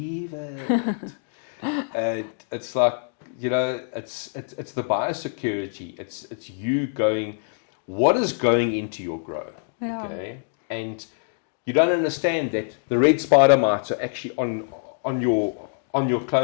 it. And it's like, it's the biosecurity. It's you going, what is going into your grow? Yeah. Okay. And you don't understand that the red spider mites are actually on your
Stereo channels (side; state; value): right; silent; digital silence